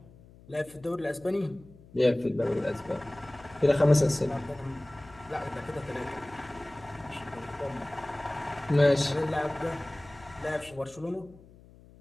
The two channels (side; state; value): left; noise; hum, 23 dB below the sound